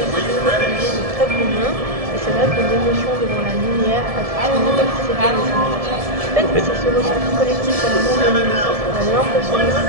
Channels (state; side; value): late; left; 1.7 ms